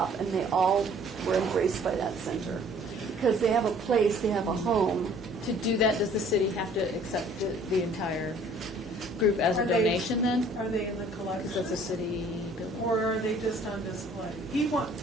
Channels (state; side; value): normal; both; correlation 0.55